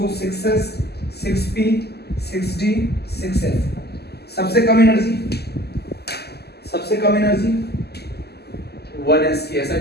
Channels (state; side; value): late; right; 0.47 ms